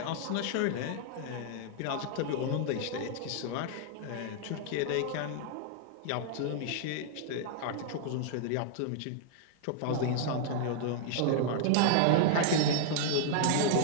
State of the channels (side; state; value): both; different; correlation -0.01